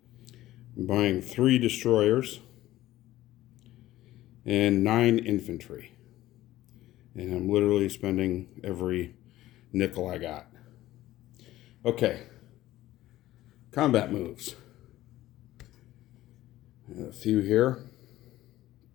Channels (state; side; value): quieter; right; 15.4 dB